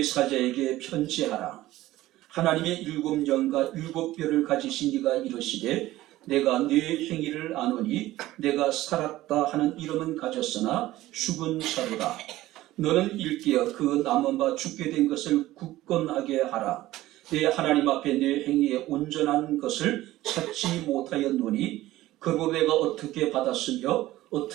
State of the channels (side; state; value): left; quieter; 16.1 dB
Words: 사자에게 편지하라. 하나님의 7영과 7뼈를 가지신 이가 이르시되 내가 네 행위를 아노니 내가 살았다 하는 이름은 가졌으나 죽은 자로다. 너는 일깨어 그 남은 바 죽게 된 것을 굳건하게 하라. 내 하나님 앞에 내 행위에 온전한 것을 찾지 못하였노니 그로 내가 어떻게 받았으며